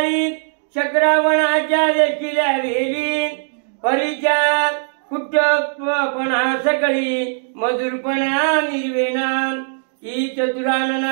शक्रावणाच्या वेशील्या वेली परीच्या कुट्टपणा सकळी मधुरपणा निर्वेणा. की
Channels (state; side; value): silent; left; digital silence